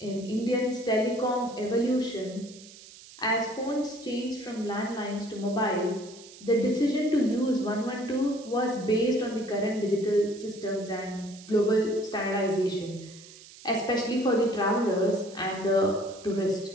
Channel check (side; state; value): right; noise; hiss, 19 dB below the sound